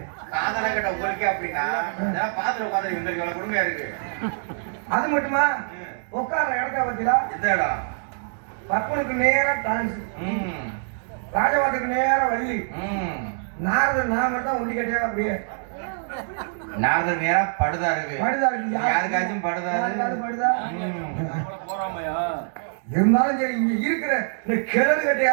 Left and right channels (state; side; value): silent; left; digital silence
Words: அது மட்டுமா உட்கார இடத்த பத்தியா பப்பனுக்கு நேரம் டான்ஸ், ராஜபாட்டுக்கு நேரம் வள்ளி, நாரதர் நான் மட்டும் ஒண்டி கட்டியா அப்படியே நாரதர் நேரா படுதா இருக்கு. யாருக்காச்சும் படுதா இருந்தாலும் சரி இங்க இருக்கிற இந்த கிழடு